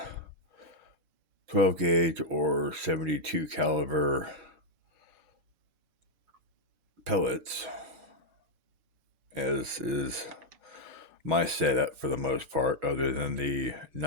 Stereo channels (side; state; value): left; late; 6.2 ms